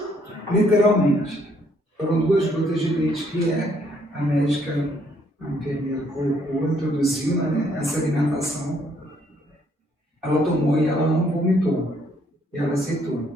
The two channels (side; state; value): both; normal; correlation 0.68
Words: Literalmente. foram 2 gotas de leite, que a médica, a enfermeira colocou, introduziu, né, essa alimentação. Ela tomou e ela não vomitou. E ela aceitou.